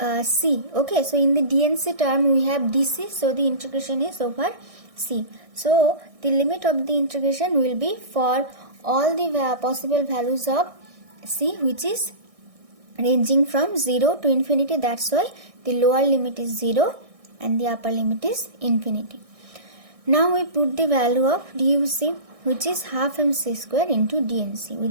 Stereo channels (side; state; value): left; late; 1.6 ms